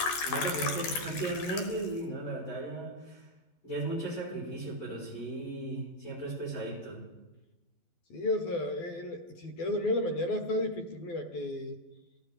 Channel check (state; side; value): late; right; 12 ms